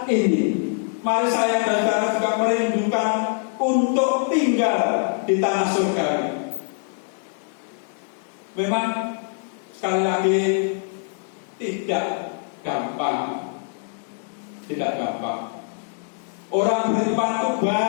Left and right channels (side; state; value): right; silent; 62 dB below the other